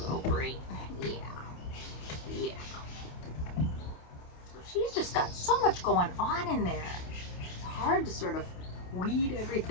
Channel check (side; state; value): right; late; 28 ms